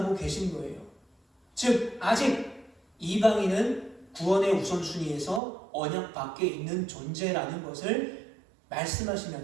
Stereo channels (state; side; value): drops out; left; at 5.4 s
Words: 계신 거예요. 즉, 아직 이방인은 구원의 우선순위에서 언약 밖에 있는 존재라는 것을